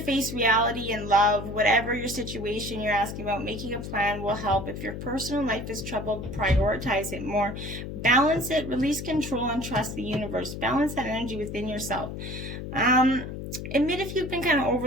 face reality and love. Whatever your situation you're asking about, making a plan will help. If your personal life is troubled, prioritize it more. Balance it, release control, and trust the universe. Balance that energy within yourself. Admit if you've been kind of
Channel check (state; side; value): noise; left; hum, 8 dB below the sound